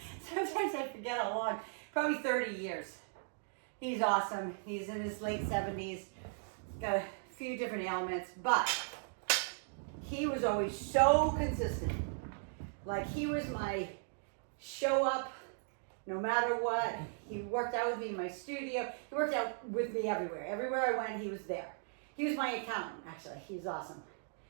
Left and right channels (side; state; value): left; silent; digital silence